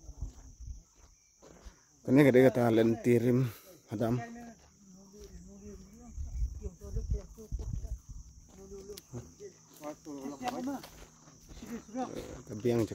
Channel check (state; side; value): identical; both; correlation 1.00